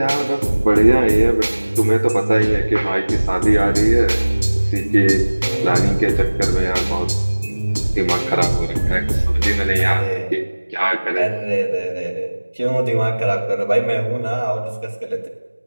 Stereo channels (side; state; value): both; inverted; correlation -1.00